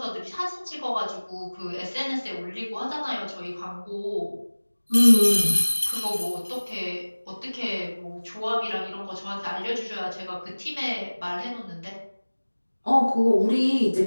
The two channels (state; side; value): inverted; both; correlation -1.00